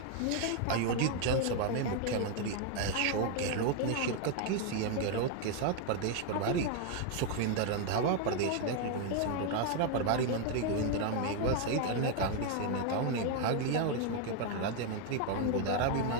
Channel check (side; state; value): both; different; correlation 0.00